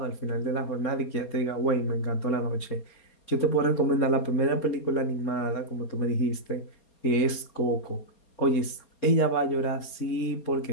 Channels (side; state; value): right; late; 4.3 ms